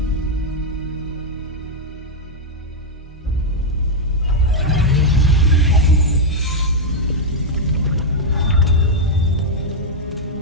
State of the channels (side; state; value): both; normal; correlation -0.01